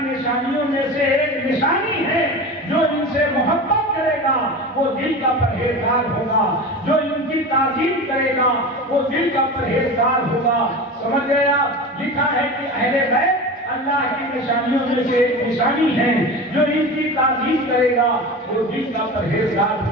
نشانیوں میں سے ایک نشانی ہے جو ان سے محبت کرے گا وہ دل کا پرہیزگار ہوگا, جو ان کی تعظیم کرے گا وہ دل کا پرہیزگار ہوگا. سمجھ گیا؟ لکھا ہے کہ اہل بیت اللہ کی نشانیوں میں سے ایک نشانی ہے, جو ان کی تعظیم کرے گا وہ دل کا پرہیزگار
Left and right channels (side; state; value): both; normal; correlation 0.29